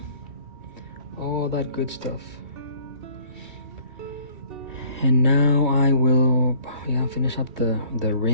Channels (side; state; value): left; late; 2.3 ms